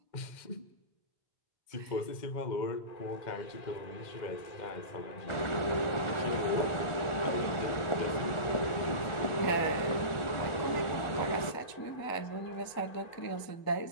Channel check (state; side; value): late; right; 1.4 ms